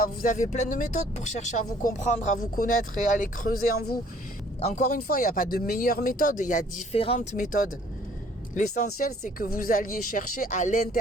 vous avez plein de méthodes pour chercher à vous comprendre, à vous connaître et à aller creuser en vous. Encore une fois, il n'y a pas de meilleure méthode, il y a différentes méthodes. L'essentiel, c'est que vous alliez chercher à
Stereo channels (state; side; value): normal; both; correlation 0.58